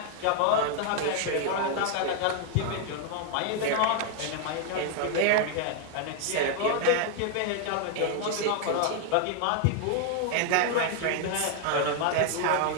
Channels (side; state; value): both; different; correlation 0.00